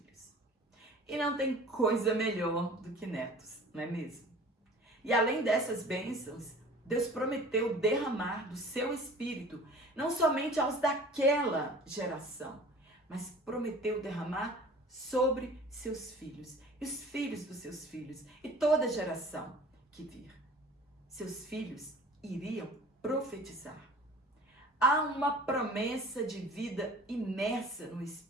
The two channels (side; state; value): both; normal; correlation 0.45